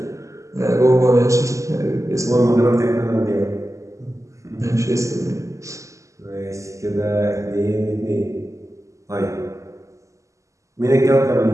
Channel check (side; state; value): left; late; 0.15 ms